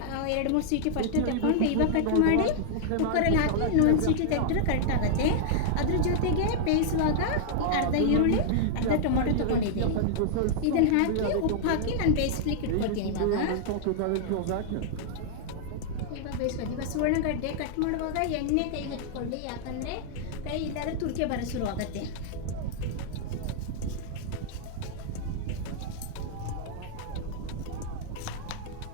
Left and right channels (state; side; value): different; both; correlation -0.01